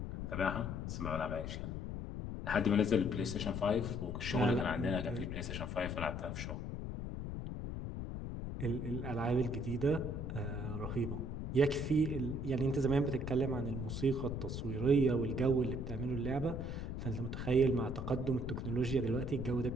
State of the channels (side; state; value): left; noise; rumble, 4 dB below the sound